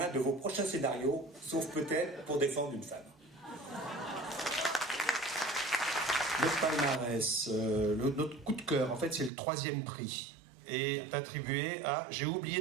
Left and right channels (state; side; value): drops out; left; at 9.3 s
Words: de vos prochains scénarios, sauf peut-être pour défendre une femme. Le palmarès, notre coup de cœur, en fait, c'est le 3e prix, est attribué à, j'ai